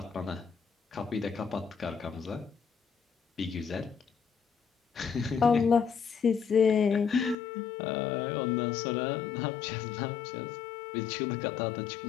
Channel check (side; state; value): right; drops out; at 7.4 s